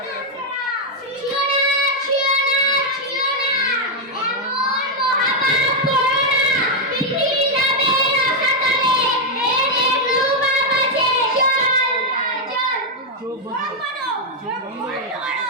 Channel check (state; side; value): normal; both; correlation 0.00